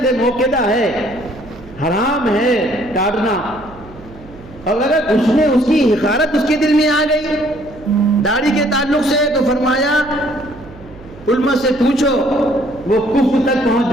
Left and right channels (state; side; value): noise; right; hum, 20 dB below the sound